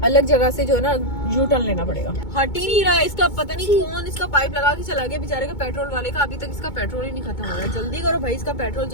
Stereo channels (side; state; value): right; late; 2.2 ms